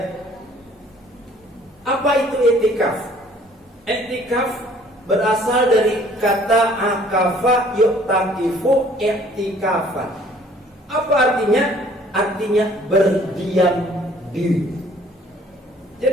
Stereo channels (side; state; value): both; normal; correlation 0.56